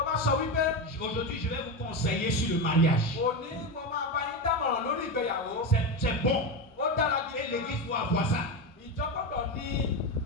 bá sọ wípé aujourd'hui je vais vous conseiller sur le mariage. òní mo máa bá yín dámọ̀ràn lórí ìgbéyàwó. C'est bon. Ó dára Et gidi. l'église doit avoir ça. Ìjọ gbọ́dọ̀ ní.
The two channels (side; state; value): both; normal; correlation 0.16